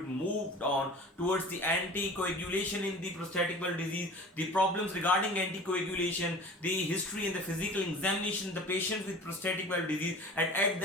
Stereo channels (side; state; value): both; normal; correlation 0.40